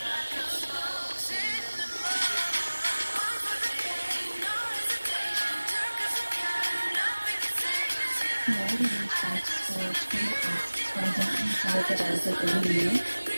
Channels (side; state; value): both; inverted; correlation -1.00